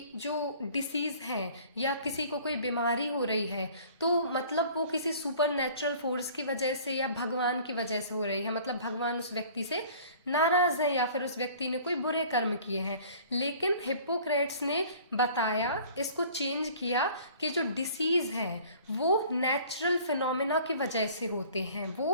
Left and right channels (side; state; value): both; inverted; correlation -0.49